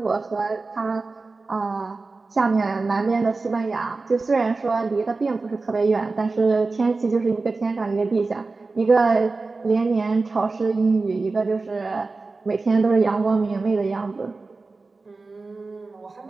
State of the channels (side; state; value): left; quieter; 3.8 dB